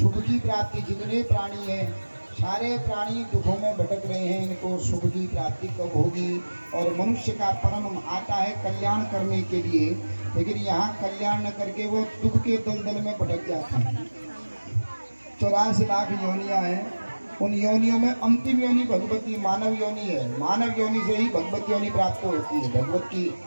की प्राप्ति, जितने प्राणी हैं सारे प्राणी दुखों में भटक रहे हैं, इनको सुख की प्राप्ति कब होगी। और मनुष्य का परम आता है कल्याण करने के लिए, लेकिन यहाँ कल्याण न करके वो दुख के दलदल में भटक जाते हैं। 84 लाख योनियां हैं, उन योनियों में अंतिम योनि भगवती मानव योनि है। मानव योनि से ही भगवत योनि प्राप्त होती है, भगवत की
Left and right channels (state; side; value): inverted; both; correlation -1.00